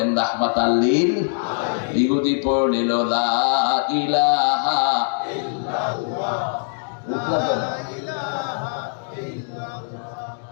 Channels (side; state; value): right; silent; digital silence